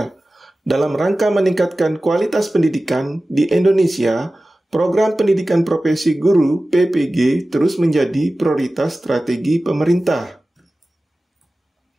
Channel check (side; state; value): both; normal; correlation 0.96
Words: Dalam rangka meningkatkan kualitas pendidikan di Indonesia, program pendidikan profesi guru PPG terus menjadi prioritas strategi pemerintah.